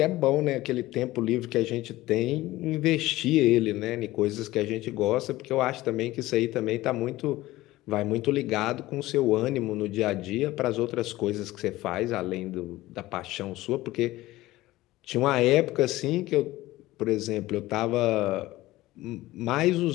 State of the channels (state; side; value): quieter; right; 17.5 dB